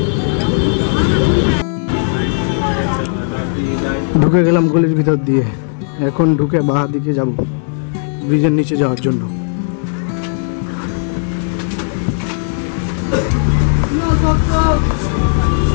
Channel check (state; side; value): silent; right; digital silence